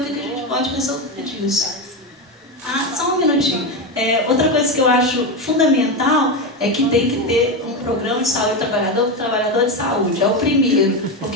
que a gente pode resolver disso. Só um minutinho. Outra coisa que eu acho fundamental é que tem que ter um programa de saúde trabalhador para o trabalhador de saúde. É o primeiro,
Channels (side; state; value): both; normal; correlation 0.14